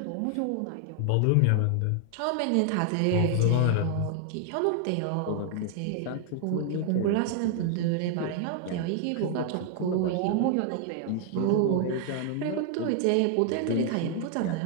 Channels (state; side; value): different; both; correlation 0.00